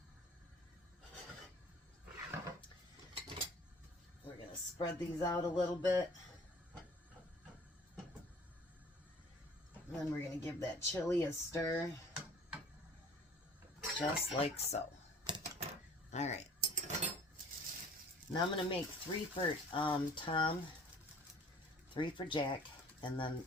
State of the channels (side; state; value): both; normal; correlation 0.51